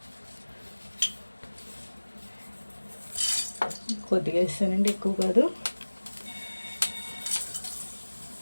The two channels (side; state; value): both; inverted; correlation -1.00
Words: కొద్దిగా వేస్తానండి, ఎక్కువ కాదు.